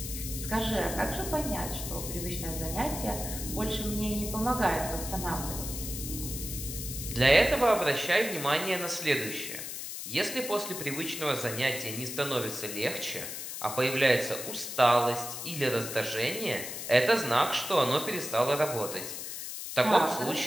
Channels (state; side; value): noise; left; hiss, 7 dB below the sound